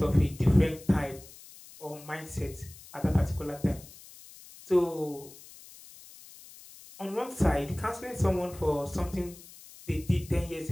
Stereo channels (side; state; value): left; noise; hiss, 19 dB below the sound